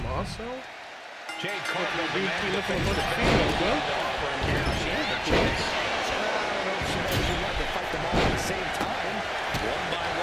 Jade Cargill demanded looking for the female, well. She had the chance. I don't know if she knows she wanted to fight them all at the same time. One by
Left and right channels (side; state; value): both; identical; correlation 1.00